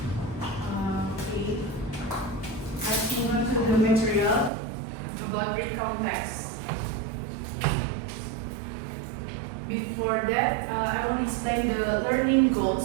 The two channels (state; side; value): drops out; left; at 4.5 s